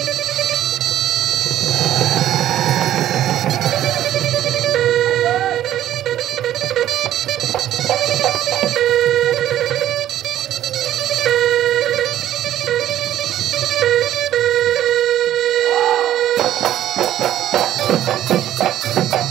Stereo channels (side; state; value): left; quieter; 12.2 dB